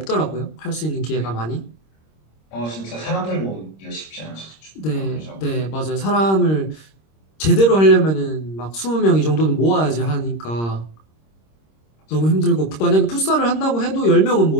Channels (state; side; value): late; right; 26 ms